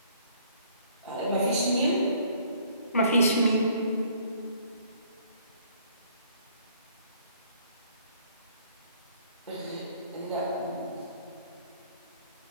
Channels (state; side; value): inverted; both; correlation -0.60